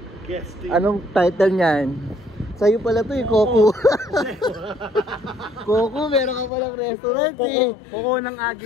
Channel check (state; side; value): drops out; right; at 6.5 s